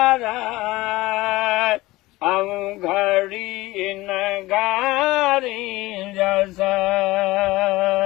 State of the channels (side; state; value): right; quieter; 19.5 dB